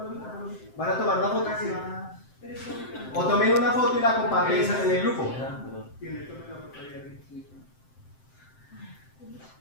¿van a tomar una foto? O tomen una foto y la comparten en el grupo.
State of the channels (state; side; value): late; right; 7.7 ms